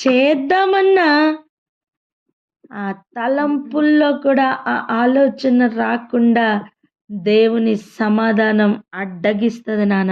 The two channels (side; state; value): both; identical; correlation 1.00